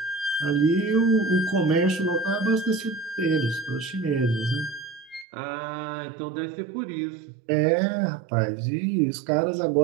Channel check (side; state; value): left; drops out; at 5.2 s